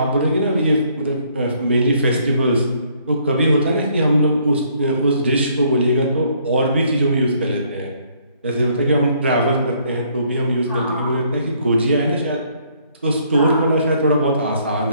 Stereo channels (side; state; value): both; inverted; correlation -0.66